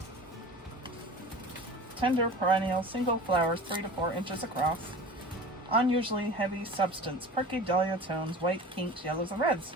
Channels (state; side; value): normal; both; correlation 0.38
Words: Tender perennial single flowers 3 to 4 inches across. Unusually heavy substance, perky dahlia tones, white, pinks, yellows, and reds.